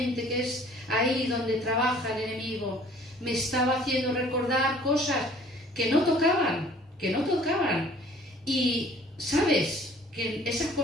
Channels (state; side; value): normal; both; correlation 0.54